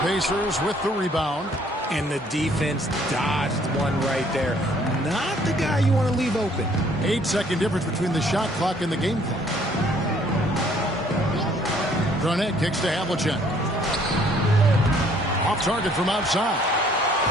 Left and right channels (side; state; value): both; normal; correlation 0.61